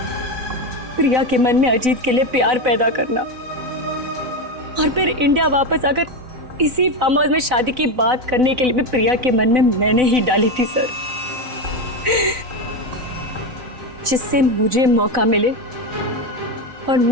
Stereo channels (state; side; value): late; left; 4.0 ms